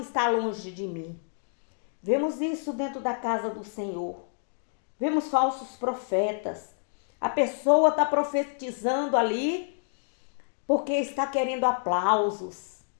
longe de mim. Vemos isso dentro da casa do Senhor. Vemos falsos profetas. A pessoa está profetizando ali porque está querendo aplausos,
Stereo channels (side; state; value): right; silent; digital silence